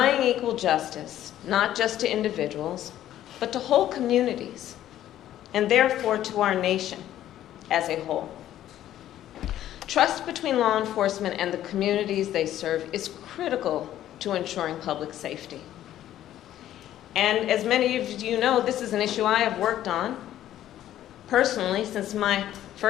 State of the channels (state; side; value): quieter; right; 12.4 dB